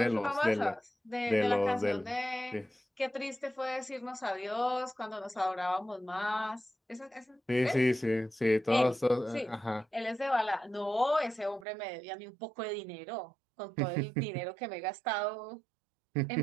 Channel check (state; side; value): drops out; left; at 11.7 s